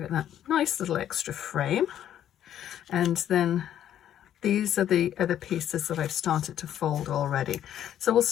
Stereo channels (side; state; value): right; quieter; 10.8 dB